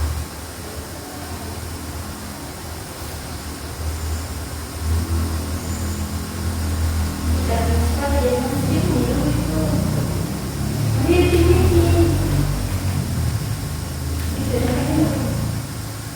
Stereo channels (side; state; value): both; identical; correlation 1.00